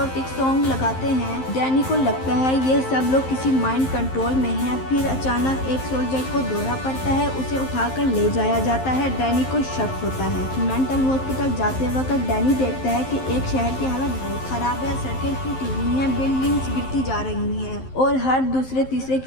सॉन्ग लगाते हैं। डैनी को लगता है ये सब लोग किसी माइंड कंट्रोल में हैं। फिर अचानक एक सोल्जर को दौरा पड़ता है, उसे उठाकर ले जाया जाता है। डैनी को शक होता है। मेंटल हॉस्पिटल जाते वक्त डैनी देखता है कि एक शहर की हालत बहुत खराब है। सड़कें टूटी हुई हैं, बिल्डिंग्स गिरती जा रही हैं और हर दूसरे तीसरे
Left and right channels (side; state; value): right; late; 11 ms